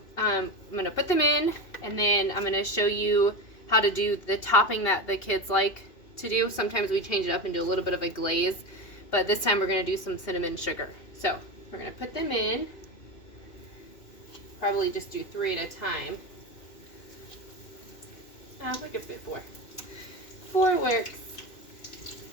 I'm going to put them in, and then I'm going to show you how to do the topping that the kids like to do. Sometimes we change it up and do a little bit of a glaze, but this time we're going to do some cinnamon sugar. So we're going to put them in, probably just do 3 at a time. We could fit 4. 4 works.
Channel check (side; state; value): right; late; 2.8 ms